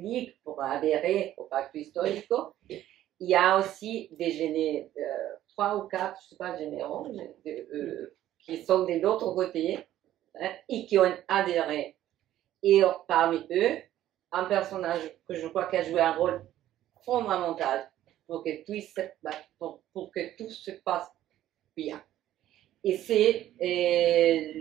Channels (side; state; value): left; quieter; 13.0 dB